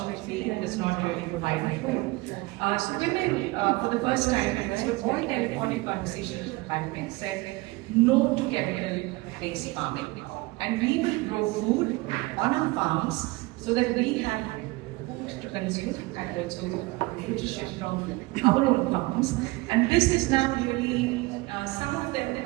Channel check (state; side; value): quieter; left; 22.3 dB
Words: does not really provide food. So women, for the first time, and this was all telephonic conversations with the pandemic, said no to chemical-based farming. And we will grow food on our farms so that we have food to consume and also nutrition from our own farms. And this is now really, some of them